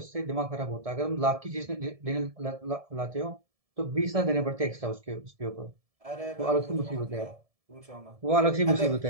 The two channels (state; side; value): late; left; 1.7 ms